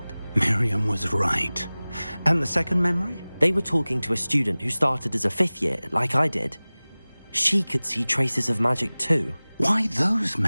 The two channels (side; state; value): both; inverted; correlation -0.99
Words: Miriam was right. And the second memory? They were talking to a student who started as a 5th year, like I did. She could see traces of magic too. Why those